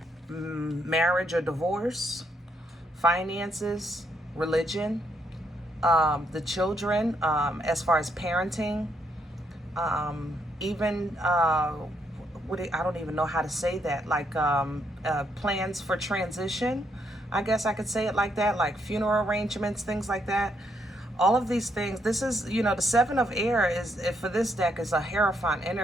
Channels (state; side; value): normal; both; correlation 0.75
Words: marriage or divorce, finances, religion, the children, as far as parenting, even I don't even know how to say that, like plans for transition. I guess I could say it like that, like funeral arrangements, things like that. All of these things. This is, you know, the Seven of Air is, for this deck, is a Hierophant